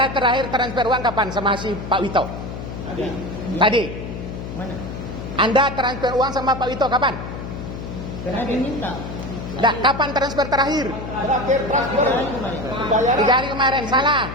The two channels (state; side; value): noise; left; hum, 8 dB below the sound